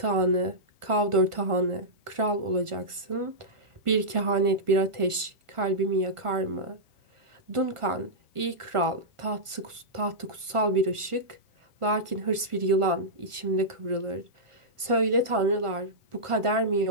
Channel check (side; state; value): left; late; 1.4 ms